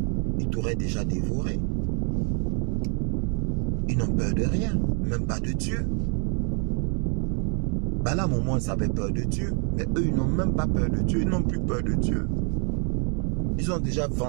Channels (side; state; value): left; quieter; 39.9 dB